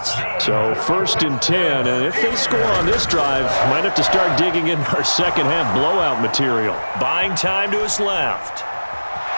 So 1st and 10, and if they score on this drive, might have to start digging in our 2nd half blowout material. Buying time to his left.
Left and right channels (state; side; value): inverted; both; correlation -1.00